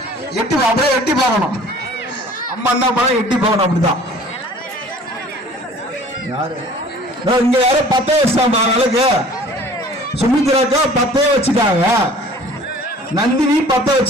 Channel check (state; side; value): normal; both; correlation 0.49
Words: எட்டி அப்படியே எட்டி பார்க்கணும். அம்மா என்ன பண்ண எட்டி பார்க்கணும். அப்படிதான் இங்க யாரும் 10 வச்சுட்டாங்க விளக்கு. சுமித்ராக்கா 10 வச்சுட்டாங்க. நந்தினி 10